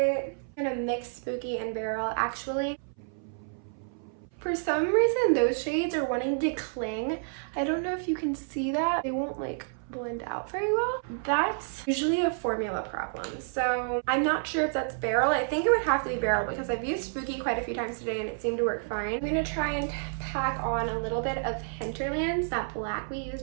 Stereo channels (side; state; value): left; silent; 58 dB below the other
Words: I'm going to mix Spooky and Barrel actually. For some reason those shades are wanting to cling. I don't know if you can see that. They won't like blend out very well. That's usually a formula problem. So I'm not sure if that's Barrel. I think it would have to be Barrel because I've used Spooky quite a few times today and it seemed to work fine. I'm going to try and pack on a little bit of Hinterlands, that black we